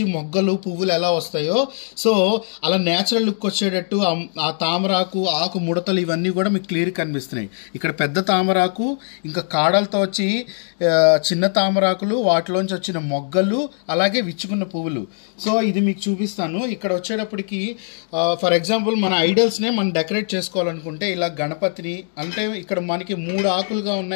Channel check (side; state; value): right; silent; 58 dB below the other